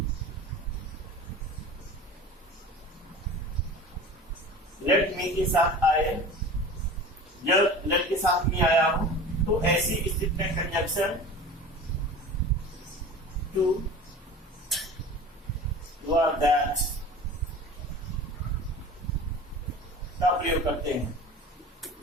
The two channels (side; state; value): both; normal; correlation 0.37